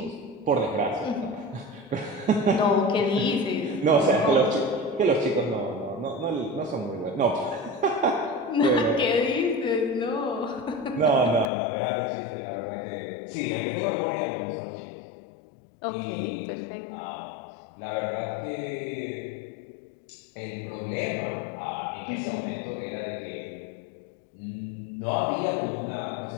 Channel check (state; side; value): drops out; right; at 11.5 s